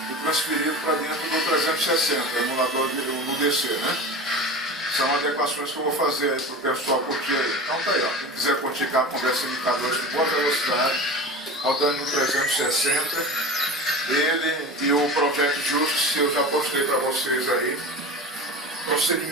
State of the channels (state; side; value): normal; both; correlation 0.32